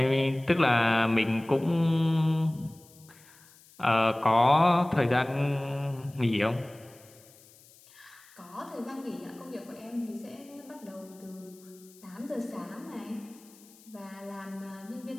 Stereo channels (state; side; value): noise; left; hiss, 25 dB below the sound